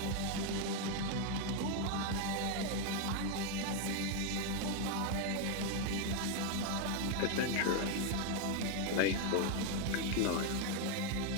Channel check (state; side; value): different; both; correlation 0.01